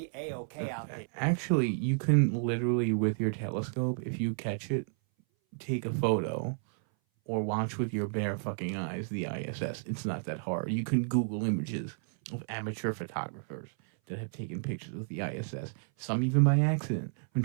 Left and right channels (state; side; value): silent; left; 57 dB below the other